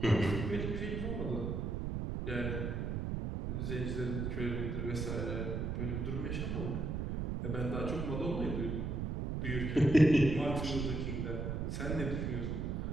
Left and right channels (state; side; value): noise; right; rumble, 2 dB below the sound